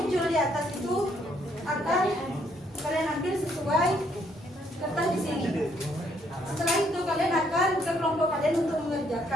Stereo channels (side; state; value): both; normal; correlation 0.69